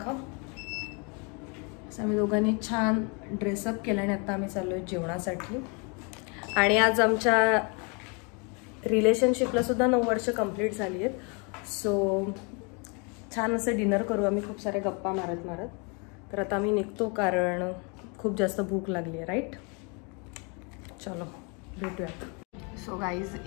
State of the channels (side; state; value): right; quieter; 33.5 dB